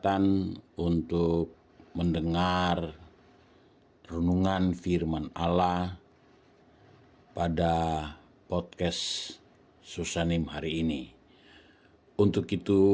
untuk mendengar renungan firman Allah pada podcast Susanim hari ini. Untuk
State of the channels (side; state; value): both; identical; correlation 1.00